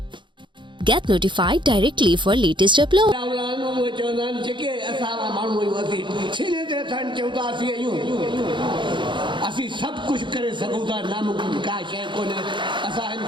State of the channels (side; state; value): left; late; 0.23 ms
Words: Get notified directly for latest upload. असी सब कुछ करे सकूं था नामुमकिन का शय कोने असा इन